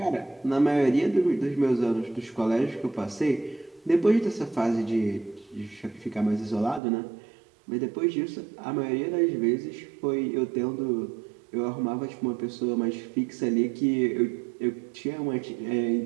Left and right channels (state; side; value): drops out; left; at 6.8 s